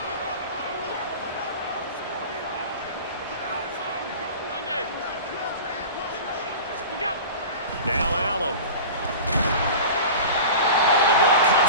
Now Allen. Oh, the ball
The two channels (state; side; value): inverted; both; correlation -0.35